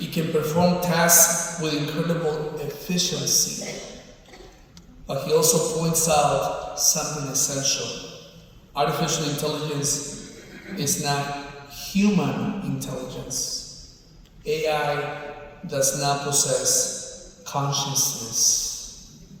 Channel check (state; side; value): identical; both; correlation 1.00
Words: can perform tasks with incredible efficiency. But he also points out something essential. Artificial intelligence is not human intelligence. AI does not possess consciousness,